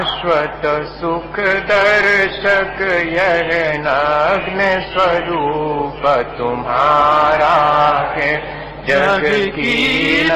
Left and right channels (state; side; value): identical; both; correlation 1.00